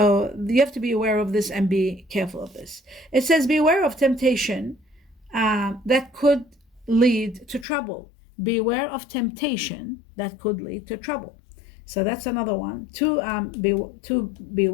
you have to be aware of this and be careful of this. It says, beware of temptation that could lead to trouble. Beware of temptation that could lead to trouble. So that's another one. Two,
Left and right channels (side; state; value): right; drops out; at 7.7 s